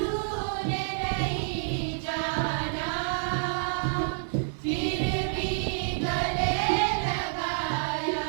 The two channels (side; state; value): left; silent; digital silence